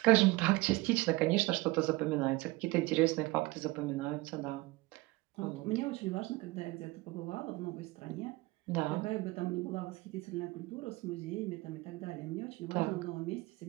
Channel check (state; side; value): quieter; left; 21.6 dB